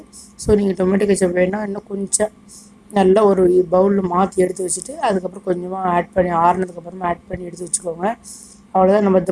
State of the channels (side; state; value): both; identical; correlation 1.00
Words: ஸோ நீங்கள் டொமேட்டோ கெச்சப் வேணால் இன்னும் கொஞ்சம் நல்லா ஒரு பவுலில் மாற்றி எடுத்து வச்சுட்டு அதுக்கப்புறம் கொஞ்சமாக ஆட் பண்ணி ஆறுனதுக்கப்புறமா ஆட் பண்ணி எடுத்து வச்சுக்கோங்க. அவ்வளோதான், நம்ம